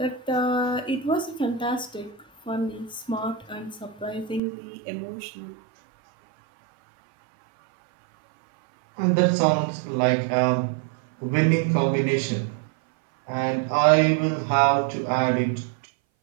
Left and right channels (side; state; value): left; drops out; at 4.4 s